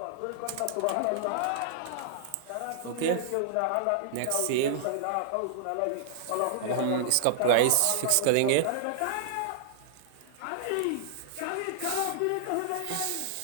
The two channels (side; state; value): both; different; correlation -0.01